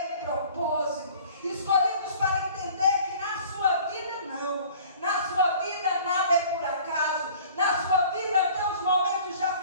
o propósito. Escolhidos para entender que na sua vida não. Na sua vida nada é por acaso. Na sua vida até os momentos de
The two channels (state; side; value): inverted; both; correlation -0.49